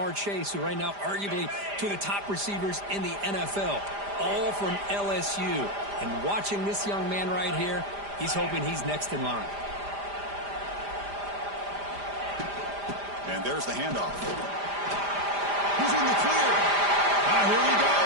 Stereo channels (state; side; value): late; left; 5.0 ms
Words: Chase, who right now arguably two of the top receivers in the NFL, all from LSU. And watching this young man right here, he's hoping he's next in line. And there's the handoff. He's in the clear. Here he